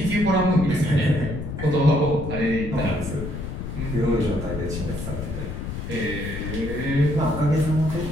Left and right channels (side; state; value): left; noise; rumble, 6 dB below the sound